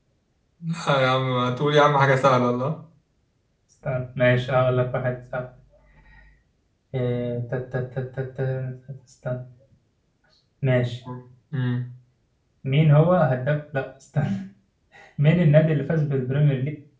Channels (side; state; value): both; identical; correlation 1.00